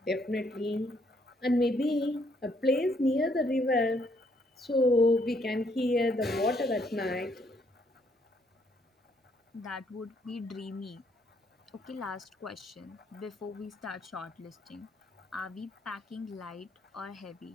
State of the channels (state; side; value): normal; both; correlation 0.70